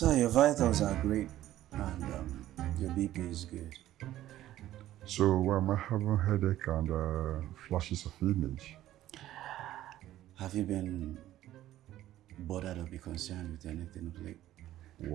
your vitals are great and your BP is good. So I'm having headache and flashes of image. Have you been bothered or be concerned with anything of late?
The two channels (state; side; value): quieter; left; 13.8 dB